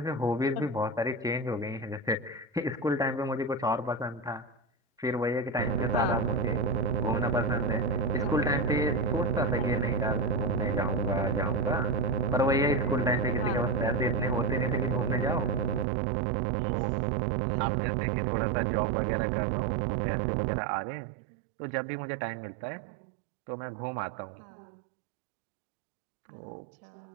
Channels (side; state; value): left; drops out; at 15.9 s